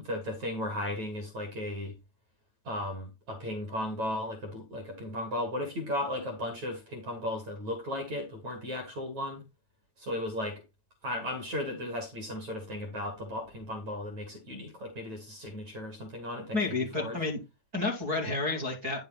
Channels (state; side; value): late; left; 9.2 ms